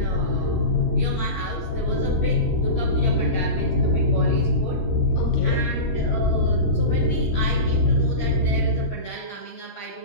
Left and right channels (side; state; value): right; late; 26 ms